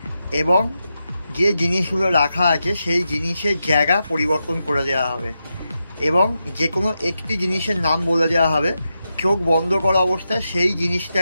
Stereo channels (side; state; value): both; inverted; correlation -0.88